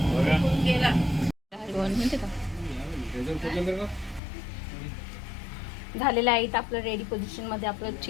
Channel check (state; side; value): drops out; right; at 4.2 s